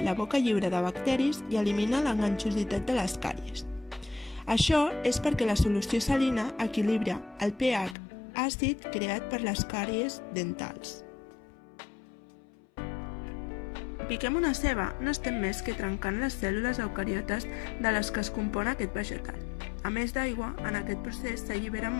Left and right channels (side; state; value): right; drops out; at 8.0 s